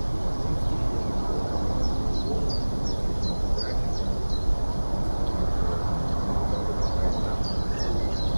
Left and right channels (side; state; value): both; inverted; correlation -1.00